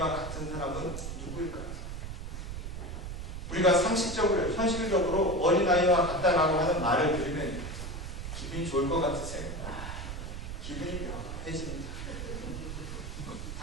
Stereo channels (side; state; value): right; noise; rumble, 7 dB below the sound